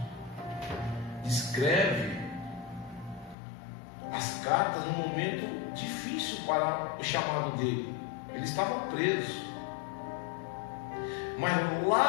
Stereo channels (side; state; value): right; drops out; at 3.4 s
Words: escreve as cartas num momento difícil para o chamado dele. Ele estava preso. Mas